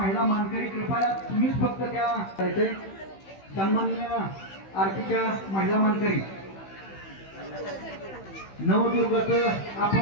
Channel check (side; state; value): right; late; 15 ms